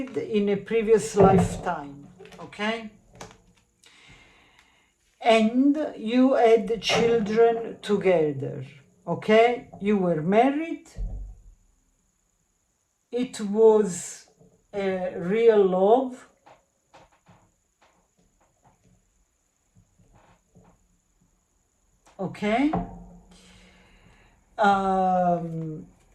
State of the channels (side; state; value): both; identical; correlation 1.00